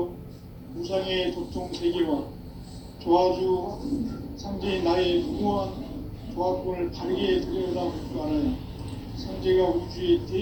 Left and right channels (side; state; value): both; identical; correlation 1.00